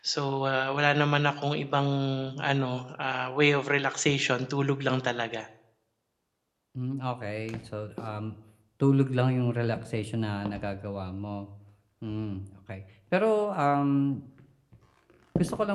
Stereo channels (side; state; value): both; identical; correlation 1.00